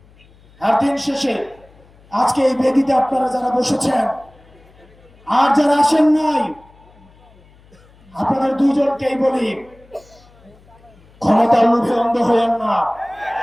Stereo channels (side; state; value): left; noise; hum, 28 dB below the sound